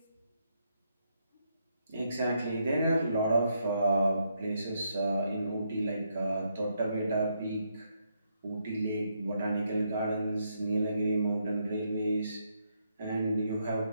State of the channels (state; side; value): inverted; both; correlation -0.77